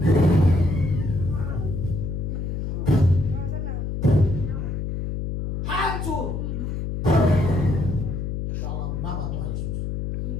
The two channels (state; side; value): noise; left; hum, 3 dB below the sound